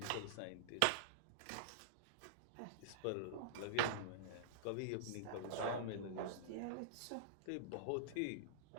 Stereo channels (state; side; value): different; both; correlation -0.02